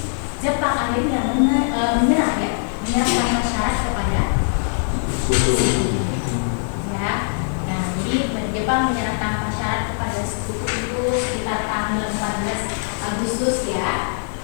Jepang akhirnya menyerah ya, menyerahkan syarat kepada ya. Nah, jadi Jepang menyerah tanpa syarat kepada sekutu itu sekitar tanggal 14 Agustus ya.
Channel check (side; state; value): right; silent; 65 dB below the other